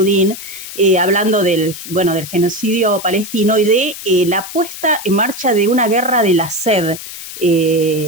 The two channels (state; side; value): noise; left; hiss, 11 dB below the sound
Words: hablando del genocidio palestino y de la puesta en marcha de una guerra de la sed.